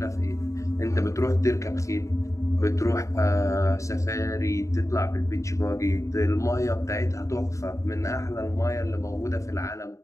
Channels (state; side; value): late; right; 0.15 ms